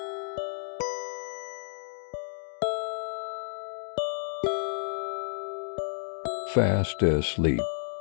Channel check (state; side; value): silent; right; digital silence